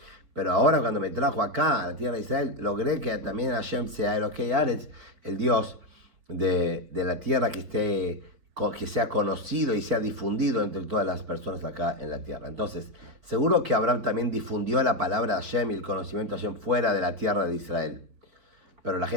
Pero ahora cuando me trajo acá a la tierra de Israel, logré que también Hashem sea Elokei Haaretz, el Dios de la tierra que sea conocido y sea difundido entre todas las personas acá en la tierra. Entonces, seguro que Abraham también difundió la palabra de Hashem y el conocimiento de Hashem fuera de la tierra de Israel. Pero la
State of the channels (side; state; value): left; late; 4.5 ms